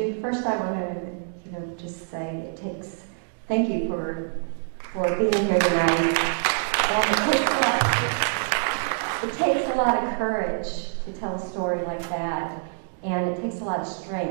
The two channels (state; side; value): silent; left; digital silence